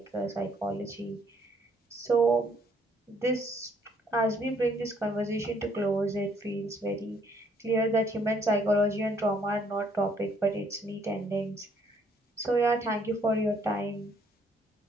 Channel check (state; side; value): normal; both; correlation 0.65